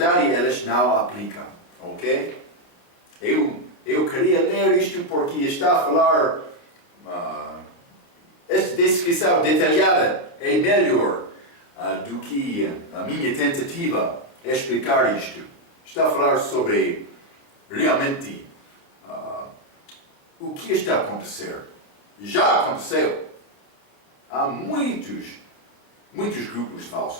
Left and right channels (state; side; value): late; right; 29 ms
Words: elas não aplicam, ok? Eu queria ler isto porque está a falar, esta descrição detalhada é melhor do que a minha tentativa de explicar isto. Está a falar sobre realmente o que está a acontecer. Já aconteceu. Há muitos grupos